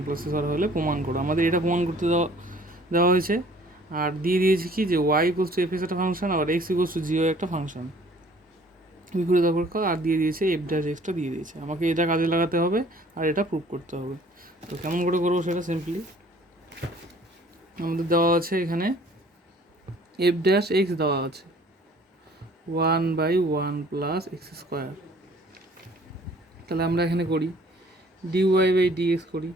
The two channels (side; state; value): both; normal; correlation 0.55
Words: + হলে প্রমাণ করো। আমাদের এটা প্রমাণ করতে দেওয়া হয়েছে, আর দিয়ে দিয়েছি কি যে Y equals to F X একটা ফাংশন, আবার X equals to G Y একটা ফাংশন, বিপরীত অপেক্ষক, আর দিয়ে দিয়েছে এফ ড্যাশ এক্সটা দিয়ে দিয়েছে। আমাকে এটা কাজে লাগাতে হবে আর এটা প্রুভ করতে হবে। তো কেমন করে করবো সেটা সিম্পলি আমাদের দেওয়া আছে এখানে এফ ড্যাশ এক্স দেওয়া আছে 1/1 + x²। তাহলে আমরা এখানে করি dy/dx করি,